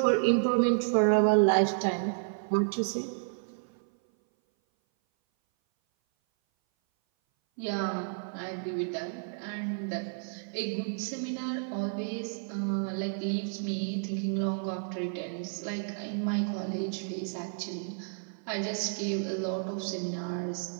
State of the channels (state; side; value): silent; left; 57 dB below the other